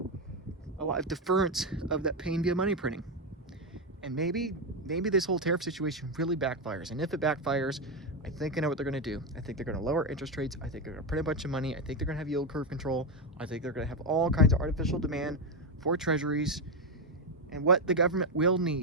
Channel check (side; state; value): both; normal; correlation 0.08